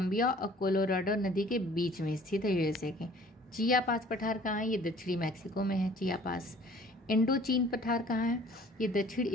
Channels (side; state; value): both; normal; correlation 0.53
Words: और कोलोराडो नदी के बीच में स्थित है, यूएसए के। चियापास पठार कहाँ है, ये दक्षिणी मैक्सिको में है चियापास। इंडो चीन पठार कहाँ है, ये दक्षिण